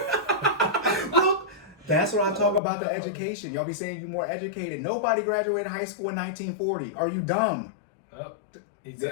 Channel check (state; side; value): drops out; right; at 2.6 s